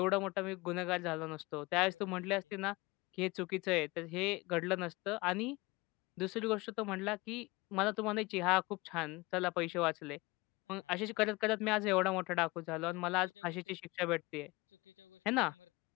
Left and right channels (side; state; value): right; quieter; 23.2 dB